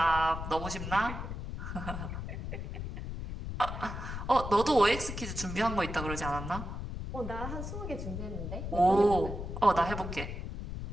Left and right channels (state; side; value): noise; left; rumble, 6 dB below the sound